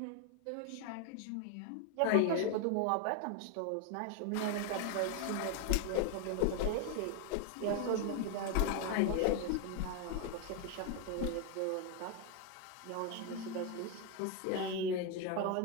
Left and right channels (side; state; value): both; different; correlation 0.01